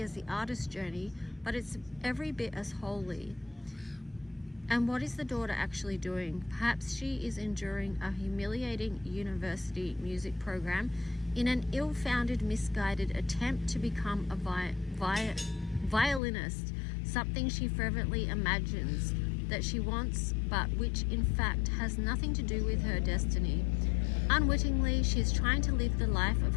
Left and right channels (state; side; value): drops out; right; at 16.2 s